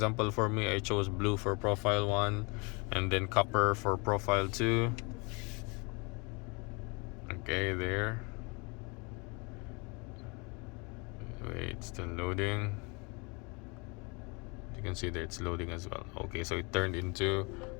for me, I chose blue for profile 1 and then copper for profile 2. Okay, there. Wait, it's still loading. You can see that it's loading as well. Okay, so it turned into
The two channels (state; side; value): quieter; right; 30.3 dB